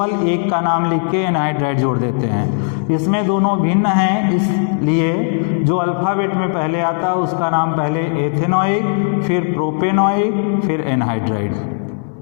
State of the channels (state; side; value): silent; right; digital silence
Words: एक का नाम लिख के एनहाइड्राइड जोड़ देते हैं। इसमें दोनों भिन्न हैं, इसलिए जो अल्फ़ाबेट में पहले आता है उसका नाम पहले एथेनोइक, फिर प्रोपेनोइक, फिर एनहाइड्राइड,